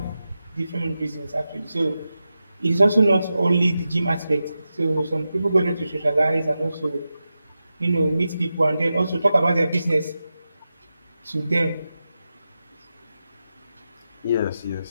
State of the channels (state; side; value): inverted; both; correlation -0.91